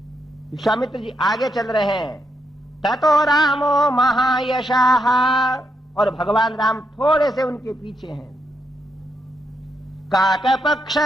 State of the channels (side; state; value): both; normal; correlation 0.81